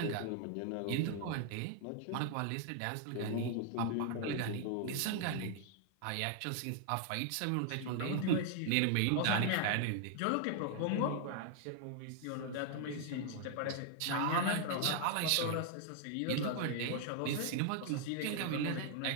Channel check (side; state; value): both; different; correlation 0.00